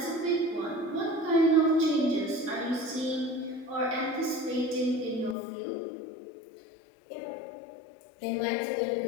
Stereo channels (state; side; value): drops out; right; at 5.4 s